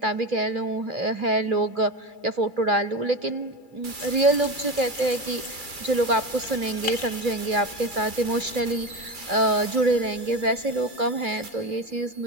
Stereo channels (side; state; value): left; late; 2.3 ms